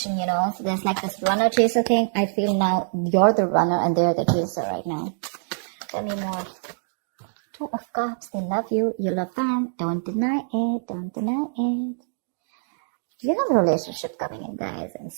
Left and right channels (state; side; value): silent; left; digital silence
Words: so there's like this runner chaser thing. I feel now you're the runner and they're the chaser right now. Tell me more. 2 of Cups, they love you, you love them. Don't deny it, don't deny it. You have a relationship coming in, guys, and